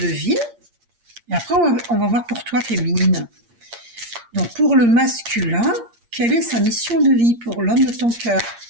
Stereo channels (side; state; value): left; late; 8.6 ms